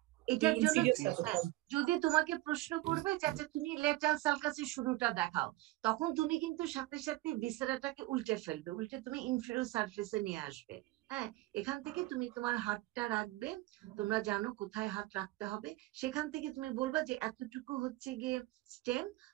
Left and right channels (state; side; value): quieter; left; 18.4 dB